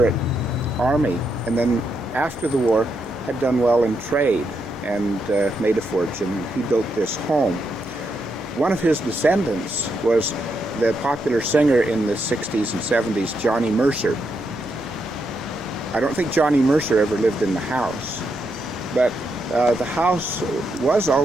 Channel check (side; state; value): both; normal; correlation 0.81